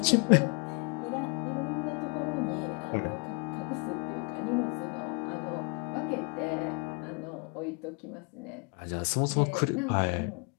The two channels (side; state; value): right; quieter; 35.6 dB